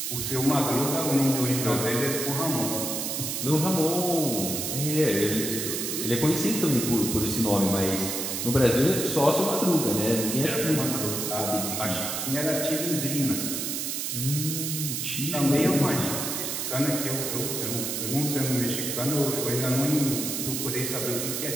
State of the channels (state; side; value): noise; right; hiss, 2 dB below the sound